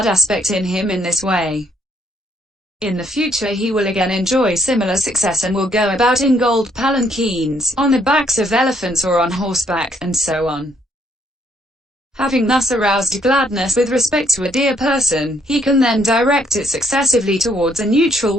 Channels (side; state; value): both; normal; correlation 0.69